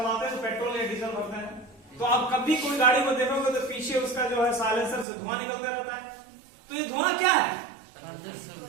तो पेट्रोल या डीजल भरते हैं, तो आप कभी कोई गाड़ी को देखोगे तो पीछे उसका जो है साइलेंसर से धुआं निकलते रहता है। तो ये धुआं क्या है?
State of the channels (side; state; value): left; drops out; at 5.1 s